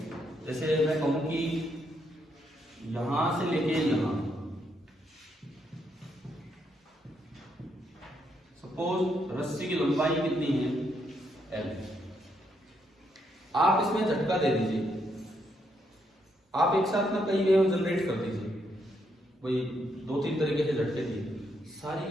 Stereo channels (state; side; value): normal; both; correlation 0.77